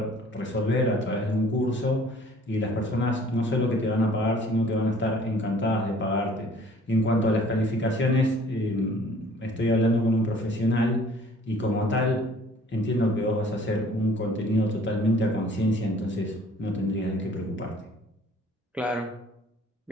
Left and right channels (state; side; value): normal; both; correlation 0.54